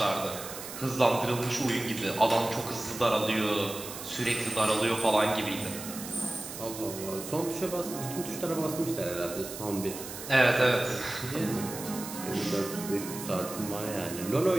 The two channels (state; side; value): noise; right; hiss, 10 dB below the sound